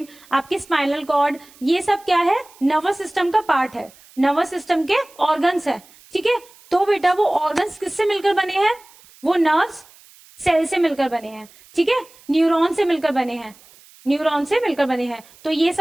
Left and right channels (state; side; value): noise; right; hiss, 26 dB below the sound